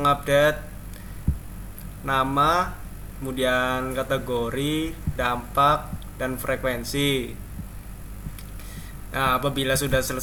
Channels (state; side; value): identical; both; correlation 1.00